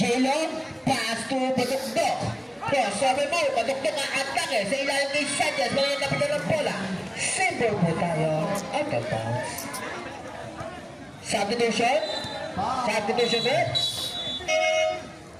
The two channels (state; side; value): identical; both; correlation 1.00